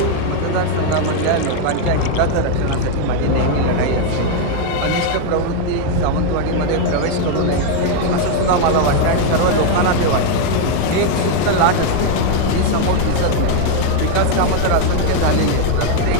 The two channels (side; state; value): both; different; correlation 0.00